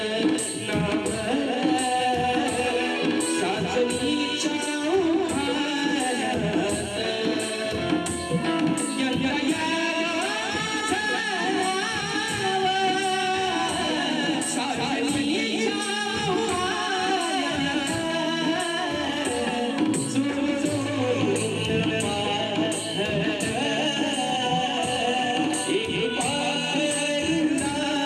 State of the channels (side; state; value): both; identical; correlation 1.00